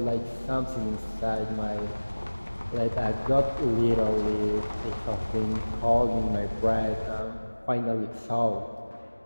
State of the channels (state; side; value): inverted; both; correlation -1.00